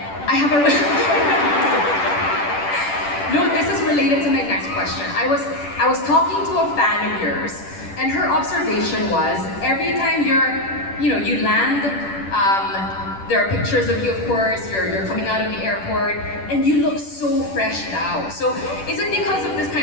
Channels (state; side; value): late; right; 10 ms